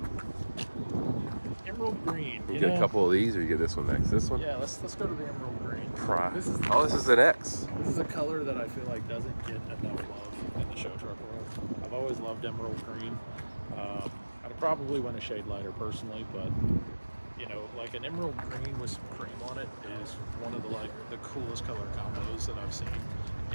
Emerald green. You get a couple of these, or you get this one next. This one? Yeah, let's go to the emerald green. This is an X. This is a color that I feel like doesn't get enough love in the show truck world. I've always loved emerald green. I'd probably want a shade lighter personally, but you know, like an emerald green with some cream on it is one of the coolest color combos that I've seen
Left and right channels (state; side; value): inverted; both; correlation -1.00